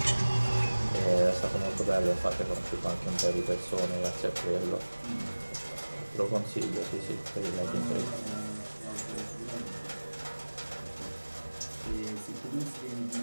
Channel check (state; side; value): inverted; both; correlation -1.00